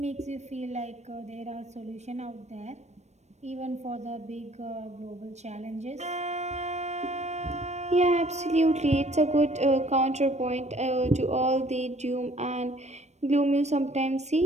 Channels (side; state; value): left; late; 0.32 ms